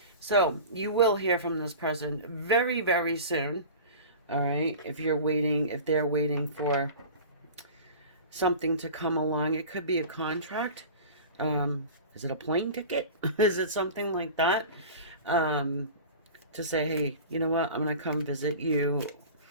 So you will hear from this person very, very soon. All right. If they're waiting for something to come along, it could be a contract. Is it a plane ticket? Is it something like that? To say, hey, you know what? I'm going to come visit you.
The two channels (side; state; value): both; inverted; correlation -0.36